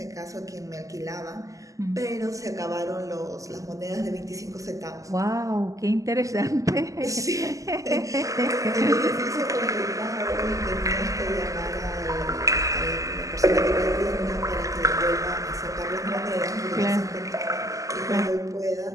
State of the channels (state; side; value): late; left; 0.16 ms